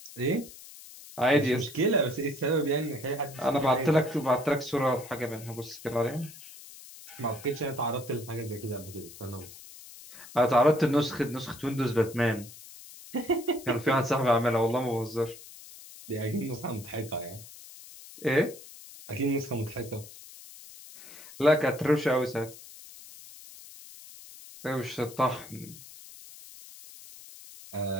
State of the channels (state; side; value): noise; left; hiss, 17 dB below the sound